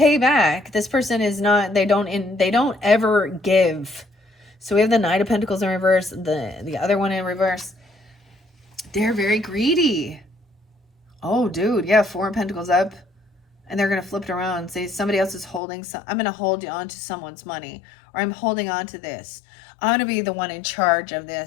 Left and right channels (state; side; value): drops out; right; at 15.6 s